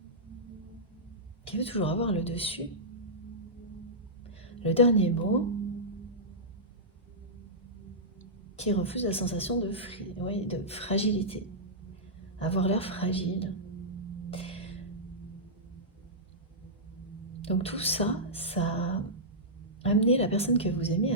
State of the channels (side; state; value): both; normal; correlation -0.13